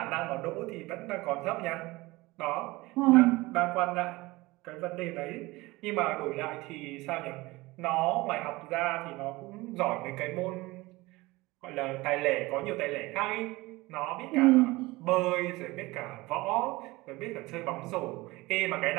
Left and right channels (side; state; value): left; quieter; 21.2 dB